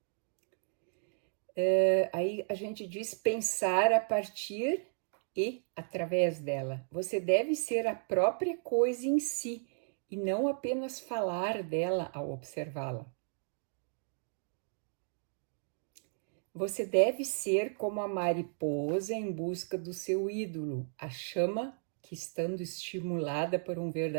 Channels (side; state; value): left; silent; digital silence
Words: Aí a gente diz pensar a partir e através dela. Você deve ser a própria coisa em si e não apenas falar dela ao observá-la. Você deve ser como a mariposa em busca do seu ídolo, a chama que, estando estimulada por um